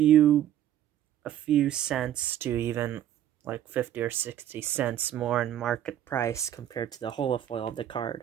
cents to even like 50 or 60 cents more in market price compared to the holofoil of the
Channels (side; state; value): left; quieter; 11.4 dB